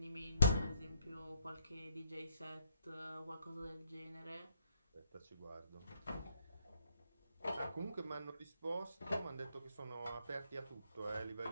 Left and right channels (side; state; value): both; inverted; correlation -0.71